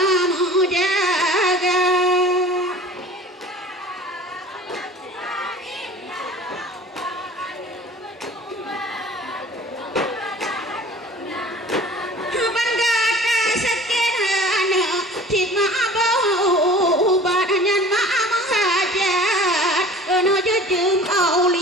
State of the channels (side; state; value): both; normal; correlation 0.44